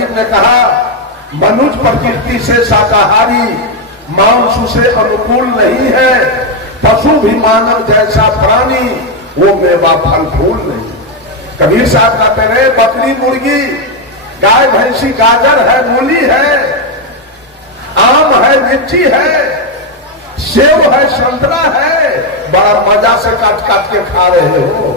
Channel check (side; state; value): both; normal; correlation 0.04